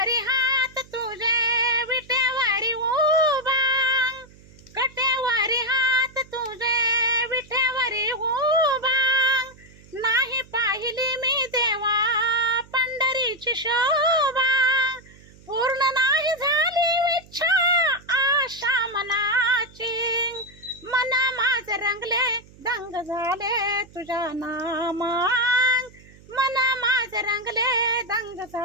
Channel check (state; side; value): noise; right; hum, 24 dB below the sound